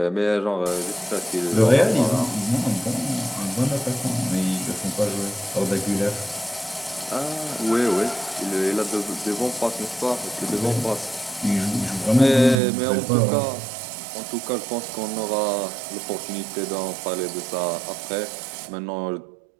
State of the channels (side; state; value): left; drops out; at 12.6 s